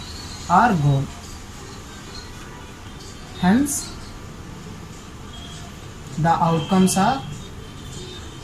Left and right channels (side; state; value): both; identical; correlation 1.00